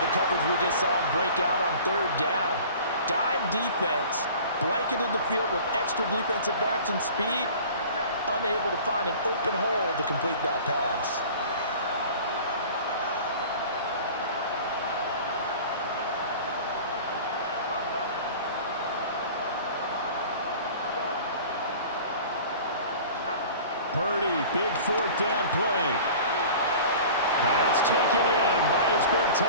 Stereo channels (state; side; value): inverted; both; correlation -0.43